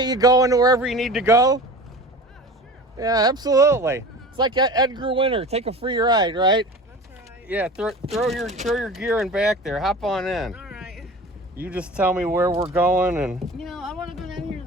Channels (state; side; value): normal; both; correlation 0.37